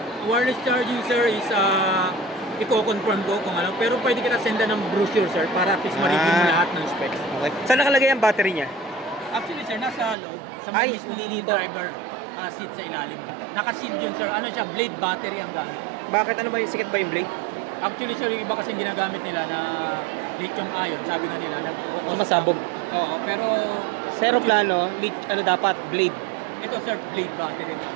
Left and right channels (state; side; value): drops out; left; at 10.2 s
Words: Wireless charging sir is i-confirm ko kung ano, pero pwede kita senda ng brochure sir para at least ma-review mo lahat ng specs. Okay. Saan nakalagay ang battery niya? Actually sir, nasa loob, sa Ay, mismong hindi dito. driver seat sa ilalim. Naka-sealed yun sir, ano siya, blade battery ang gamit. Bakit? Ano ba yung sikat ba yung blade? Actually sir, yung iba kasi ginagamit nila na lithium ion, sabi nga nila na Masabog. oo, pero Zero plano, ano dapat? Blade. ito sir, blade battery na.